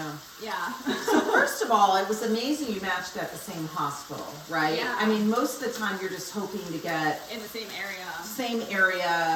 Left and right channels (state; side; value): identical; both; correlation 1.00